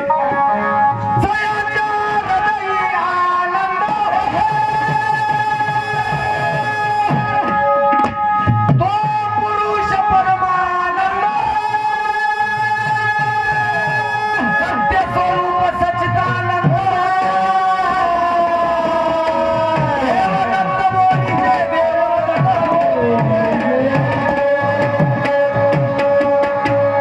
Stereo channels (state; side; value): identical; both; correlation 1.00